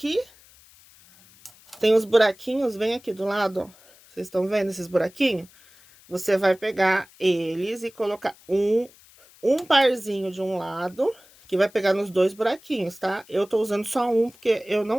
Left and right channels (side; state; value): left; noise; hiss, 26 dB below the sound